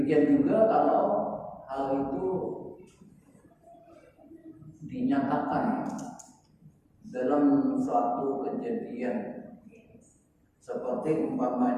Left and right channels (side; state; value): both; identical; correlation 1.00